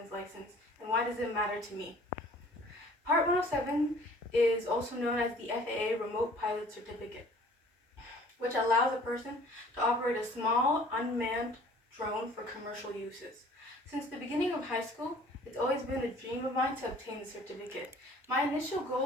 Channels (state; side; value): normal; both; correlation 0.51